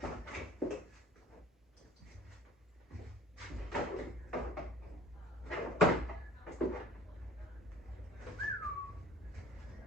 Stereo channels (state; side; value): normal; both; correlation 0.48